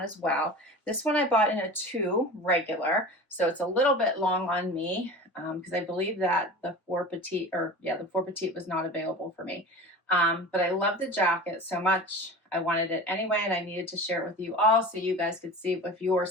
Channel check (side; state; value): both; normal; correlation 0.34